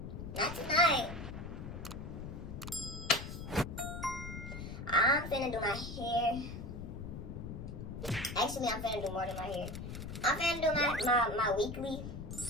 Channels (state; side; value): noise; left; rumble, 8 dB below the sound